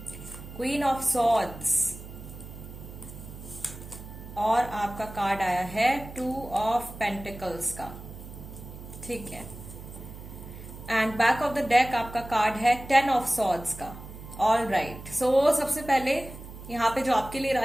queen of swords, और आपका कार्ड आया है 2 ऑफ पेंटिकल्स का, ठीक है। And back of the deck आपका कार्ड है 10 ऑफ सॉर्ड्स का। ऑल राइट, सो सबसे पहले यहाँ पे जो आपके लिए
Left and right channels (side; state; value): right; noise; hum, 14 dB below the sound